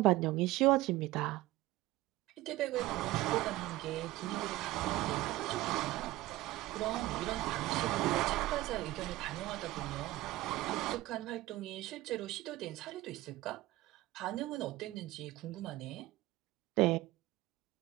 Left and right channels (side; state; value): left; quieter; 17.6 dB